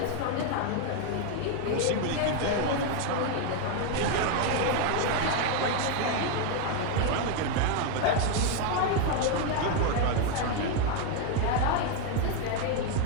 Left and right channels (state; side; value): different; both; correlation 0.01